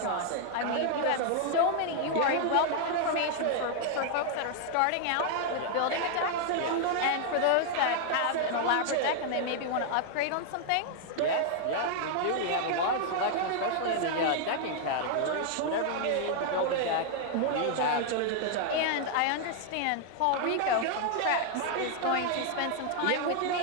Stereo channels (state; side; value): different; both; correlation 0.00